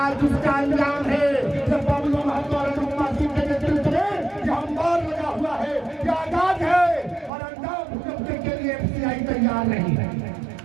उसका अंजाम है जब बबलू महतो और अनुपमा सिंह के नेतृत्व में जो अंबार लगा हुआ है, जो आजाद है, और अंजाम भुगतने के लिए एफसीआई तैयार नहीं है।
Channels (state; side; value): drops out; left; at 7.3 s